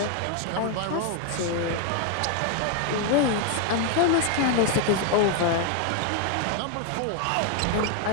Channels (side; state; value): both; different; correlation 0.01